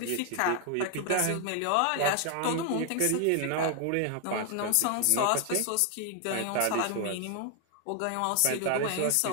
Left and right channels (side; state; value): both; different; correlation 0.00